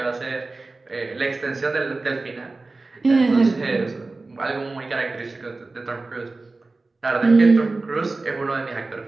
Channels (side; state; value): left; quieter; 3.4 dB